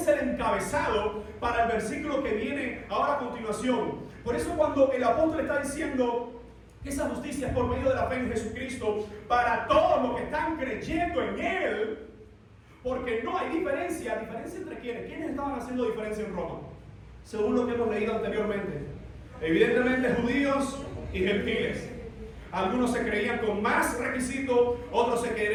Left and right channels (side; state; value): both; identical; correlation 1.00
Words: el encabezado para el versículo que viene ahora a continuación. Por eso cuando el apóstol está diciendo que esa justicia es por medio de la fe en Jesucristo para todos los que están creyendo en Él, porque no hay diferencia. ¿Diferencia entre quiénes? ¿Quiénes estaban haciendo diferencia en Roma? Según lo que hemos leído anteriormente. Evidentemente judíos y gentiles. Algunos se creían con más requisitos, otros se